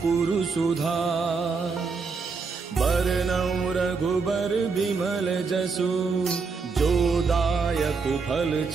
सुधार। बरनउँ रघुबर बिमल जसु जो दायक फल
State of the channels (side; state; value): left; quieter; 4.9 dB